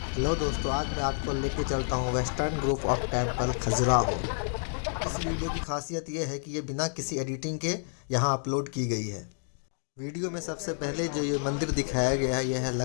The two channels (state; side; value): silent; right; digital silence